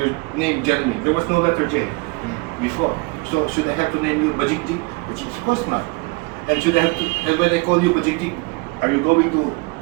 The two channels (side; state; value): left; quieter; 27.5 dB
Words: name Jeremy, there was no letter J before. So should I have to name you Bajikji? Of course not. And should I have to, and when I call you Bajikji, are you going to